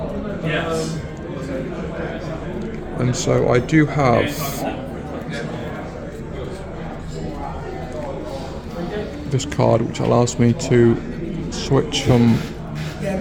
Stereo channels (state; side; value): identical; both; correlation 1.00